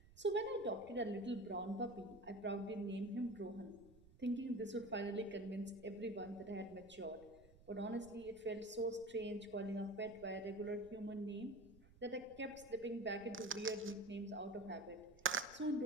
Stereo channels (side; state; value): right; noise; rumble, 22 dB below the sound